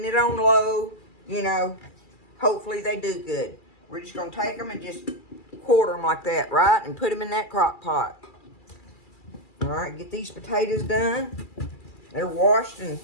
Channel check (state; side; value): late; right; 2.3 ms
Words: it on low, hopefully they do good. We're just going to take them and just quarter them like that, right? And put them in that crock pot. All right, get these potatoes done. They're washed and